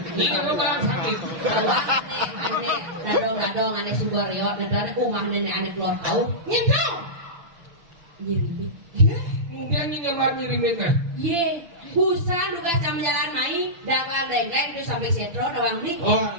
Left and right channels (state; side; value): late; left; 6.4 ms